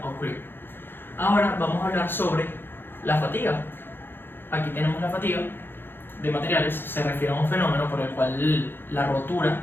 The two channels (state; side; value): late; right; 0.10 ms